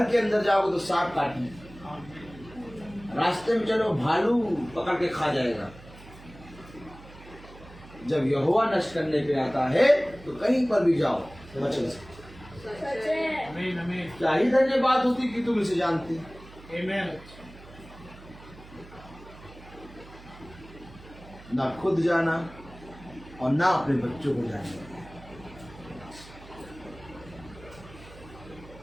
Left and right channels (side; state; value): right; noise; hum, 19 dB below the sound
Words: के अंदर जाओगे तो सांप काटने, रास्ते में चलो भालू पकड़ के खा जाएगा। जब यहोवा नष्ट करने पे आता है तो कहीं पर भी जाओ बच नहीं सकते। क्या ही धन्यवाद होती कि तुम इसे जानती। ना खुद जाना और ना अपने बच्चों को जाना।